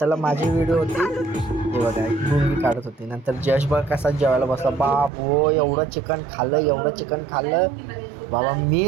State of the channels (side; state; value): left; drops out; at 5.1 s